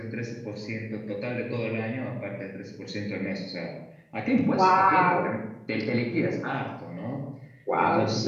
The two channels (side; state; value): both; identical; correlation 1.00